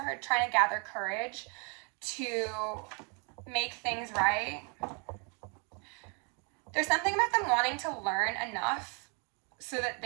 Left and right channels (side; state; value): left; quieter; 36.1 dB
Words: heard trying to gather courage to make things right. There's something about them wanting to learn enough so that